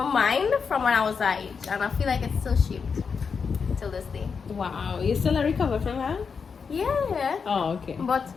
mind from when I was that age, and I feel like it's still shaped till this day. Wow, you still a recover from that? Yeah, Oh, okay. but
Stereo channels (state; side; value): quieter; right; 5.7 dB